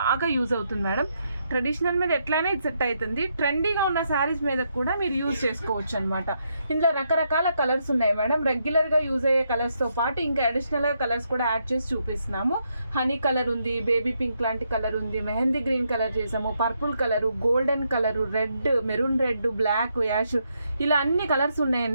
యూజ్ అవుతుంది మేడం. ట్రెడిషనల్ మీద ఎట్లయినా ఇది సెట్ అవుతుంది. ట్రెండీగా ఉన్న శారీస్ మీద కూడా మీరు యూజ్ చేసుకోవచ్చు అనమాట. ఇందులో రకరకాల కలర్స్ ఉన్నాయి మేడం. రెగ్యులర్గా యూజ్ అయ్యే కలర్స్తో పాటు ఇంకా అడిషనల్గా కలర్స్ కూడా యాడ్ చేసి చూపిస్తున్నాము. హనీ కలర్ ఉంది, బేబీ పింక్ లాంటి కలర్ ఉంది, మెహందీ గ్రీన్ కలర్ చేసాము, purple colour, golden colour, red, maroon red, black, ash, ఇలా అన్ని కలర్స్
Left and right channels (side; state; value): both; inverted; correlation -0.78